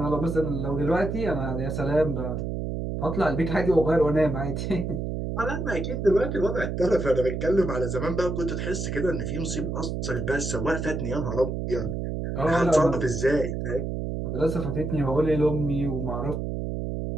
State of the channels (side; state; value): right; noise; hum, 3 dB below the sound